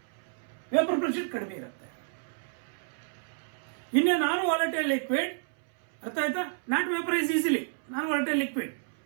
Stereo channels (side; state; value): left; silent; 58 dB below the other